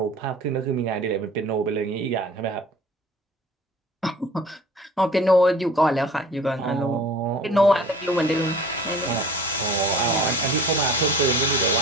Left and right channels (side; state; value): both; normal; correlation 0.45